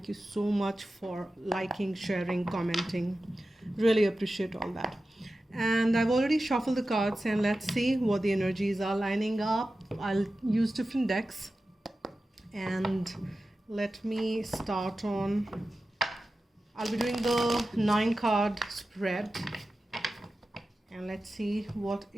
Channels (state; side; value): normal; both; correlation 0.94